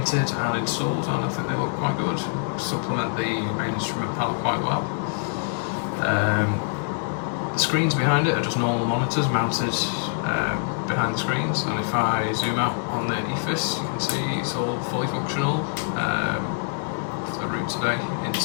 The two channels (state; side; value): silent; right; digital silence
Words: and installed, and I think they look quite good, supplement the main instrument panel quite well. The screens behind it are just normal monitors mounted behind the screens, and if I zoom out on the EFIS, you can see it's all fully functional. The route today